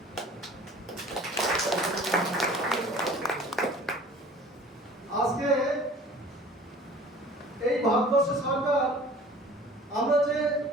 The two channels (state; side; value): normal; both; correlation 0.47